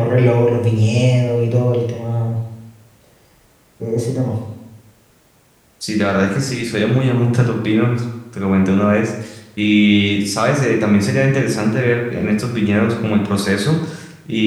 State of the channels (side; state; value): both; identical; correlation 1.00